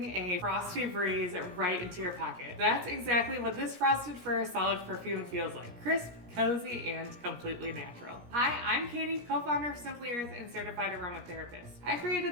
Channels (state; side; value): late; left; 17 ms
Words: a frosty breeze right into your pocket. That's exactly what this Frosted Fir Solid Perfume feels like. Crisp, cozy, and completely natural. Hi, I'm Katie, co-founder of Simply Earth and certified aromatherapist. I